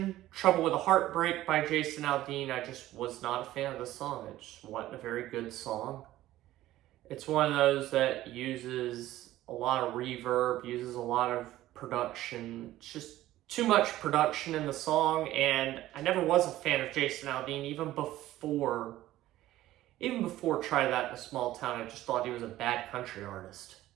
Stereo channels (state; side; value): quieter; left; 15.0 dB